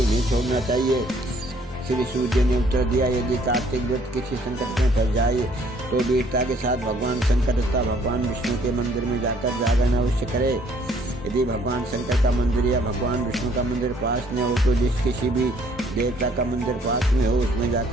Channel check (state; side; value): normal; both; correlation 0.62